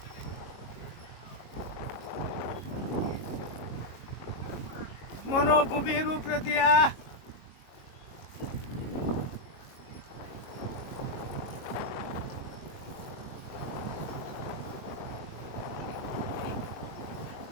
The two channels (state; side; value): late; right; 22 ms